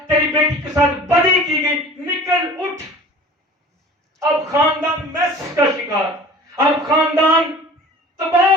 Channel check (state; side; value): normal; both; correlation 0.42